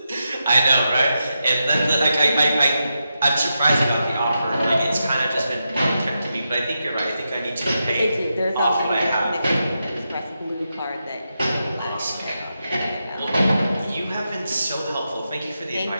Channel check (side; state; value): both; inverted; correlation -0.87